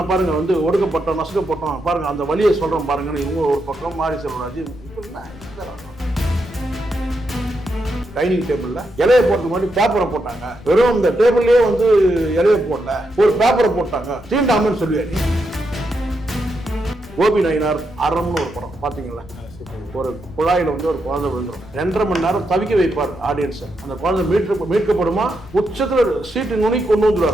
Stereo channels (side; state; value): left; noise; rumble, 19 dB below the sound